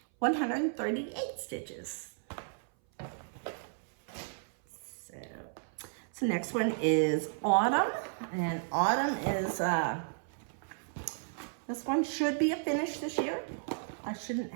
138 stitches. So next one is Autumn. And Autumn is, this one should be a finish this year. I shouldn't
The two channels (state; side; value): silent; left; 55 dB below the other